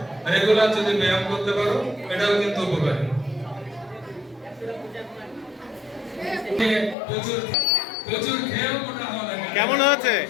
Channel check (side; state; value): right; drops out; at 7.0 s